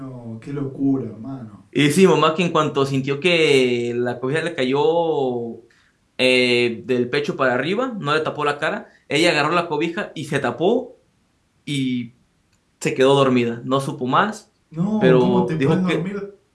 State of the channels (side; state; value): both; identical; correlation 1.00